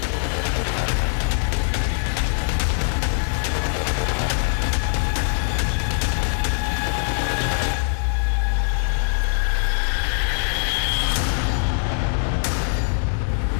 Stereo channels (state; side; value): silent; right; digital silence